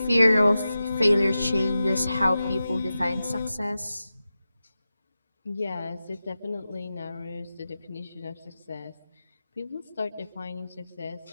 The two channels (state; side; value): inverted; both; correlation -0.93